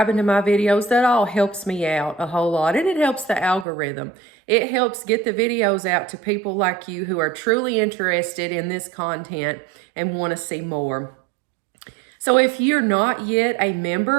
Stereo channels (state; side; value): drops out; left; at 3.7 s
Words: to my videos, that all helps me out a whole lot. And it helps the algorithm. It helps get the videos out to people like you who are truly interested in this content and want to see more. So if you're not yet a